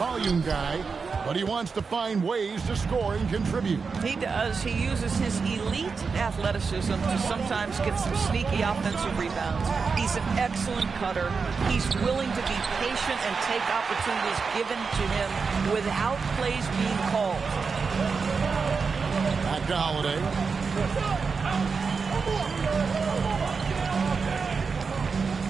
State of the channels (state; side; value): quieter; left; 5.1 dB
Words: guy, but he wants to find ways to score and contribute. He does. He uses his elite athleticism to sometimes get some sneaky offensive rebounds. He's an excellent cutter. He's willing to be patient and take opportunities given to him without plays being called. Back to Holiday.